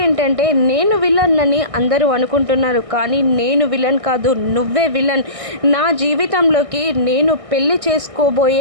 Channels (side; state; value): left; late; 1.6 ms